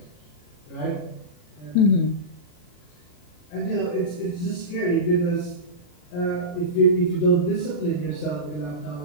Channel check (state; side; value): late; right; 40 ms